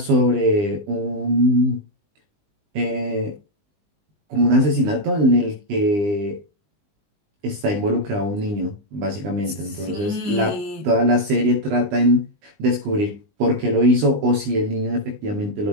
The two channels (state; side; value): late; left; 20 ms